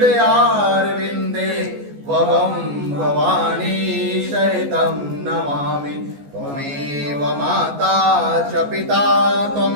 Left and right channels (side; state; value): left; late; 14 ms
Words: वहं भवानी सहितं नमामि। त्वमेव माता च पिता